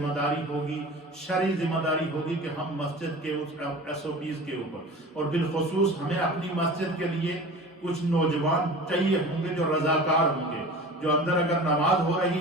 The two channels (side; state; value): both; normal; correlation 0.37